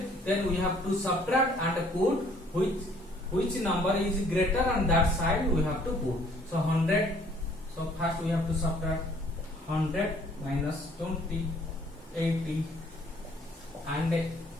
Then we have to subtract and put which number is greater on that side we have to put. So 100. So first we have to subtract 100 minus 20, 80, and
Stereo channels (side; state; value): both; normal; correlation 0.59